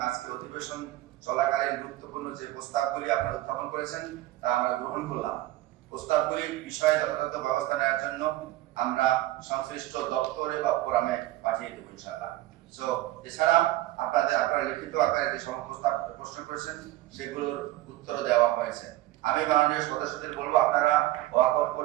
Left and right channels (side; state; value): left; quieter; 16.5 dB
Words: আজকে অধিবেশন চলাকালীন গুরুত্বপূর্ণ যে প্রস্তাবগুলি আপনারা উত্থাপন করেছেন তা আমরা গ্রহণ করলাম। প্রস্তাবগুলি বিষয়ে যথাযথ ব্যবস্থা নেওয়ার জন্য আমরা সংশ্লিষ্ট দপ্তরে বা ফোরামে পাঠিয়ে দেবো ইনশাআল্লাহ। সো এছাড়া আপনারা লিখিত আকারে যে সমস্ত প্রশ্ন করেছেন সেগুলোর উত্তর দেওয়া হয়েছে। আমি মাননীয় সদস্যদের বলবো আপনারা ওয়াকআউট